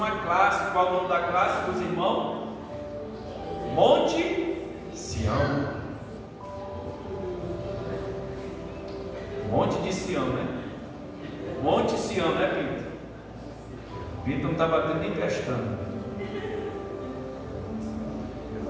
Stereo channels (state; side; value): identical; both; correlation 1.00